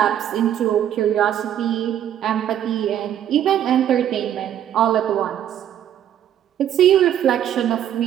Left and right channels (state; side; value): quieter; left; 10.5 dB